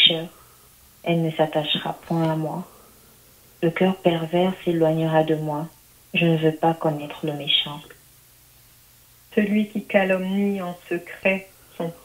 Elle ne s'attachera point à moi. Le cœur pervers s'éloignera de moi. Je ne veux pas connaître le méchant. Celui qui calomnie en secret son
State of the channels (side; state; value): both; identical; correlation 1.00